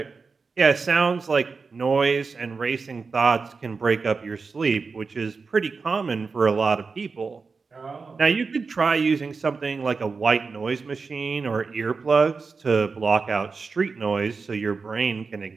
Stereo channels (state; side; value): quieter; left; 4.6 dB